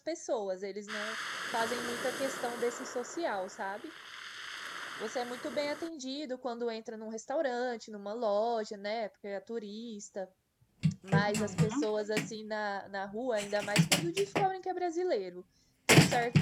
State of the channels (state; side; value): identical; both; correlation 1.00